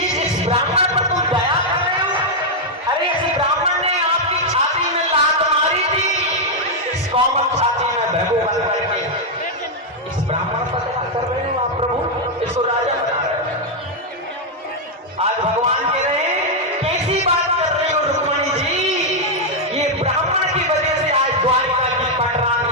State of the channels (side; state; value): both; normal; correlation -0.01